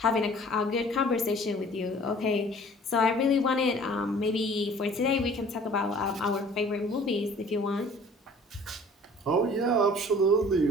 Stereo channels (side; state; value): both; normal; correlation 0.50